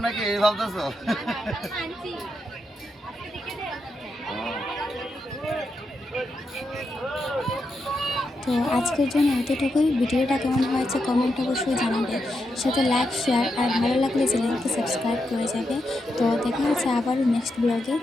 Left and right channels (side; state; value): both; normal; correlation 0.84